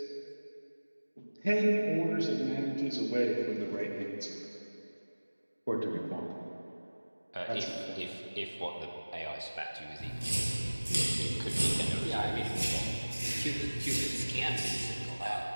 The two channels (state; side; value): inverted; both; correlation -1.00